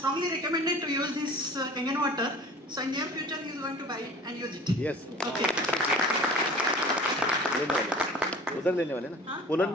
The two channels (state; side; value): normal; both; correlation 0.43